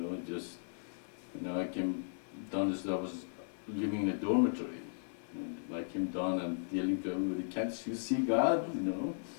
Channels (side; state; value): right; silent; 54 dB below the other